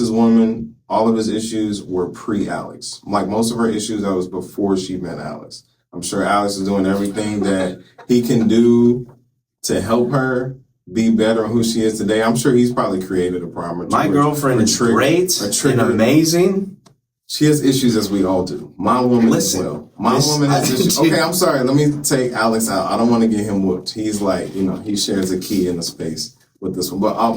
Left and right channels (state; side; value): identical; both; correlation 1.00